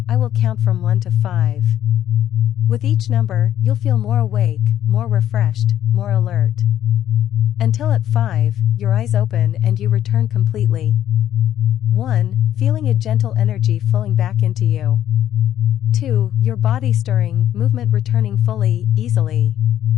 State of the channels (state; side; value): quieter; right; 11.3 dB